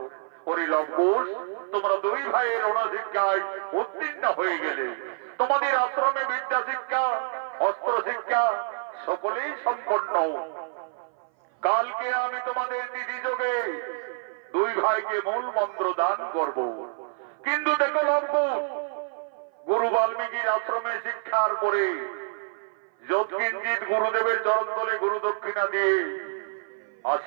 পরিলম্বুষ, তোমরা দুই ভাইয়ের অনশিক্ষায় উত্তীর্ণ হয়ে গেলে। তোমাদের আশ্রমে বিদ্যা শিক্ষা, অস্ত্র শিক্ষা সকলেই সম্পন্ন। কালকে আমি তোমাদের তিথি যোগে দুই ভাইকে মূল মন্ত্র দান করব। কিন্তু দেখো লম্বুষ, গুরু বাল্মীকির আশ্রমে শিক্ষার পরে যৎকিঞ্চিত গুরুদেবের চরণ তলে গুরু দক্ষিণা দিয়ে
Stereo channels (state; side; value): silent; left; 56 dB below the other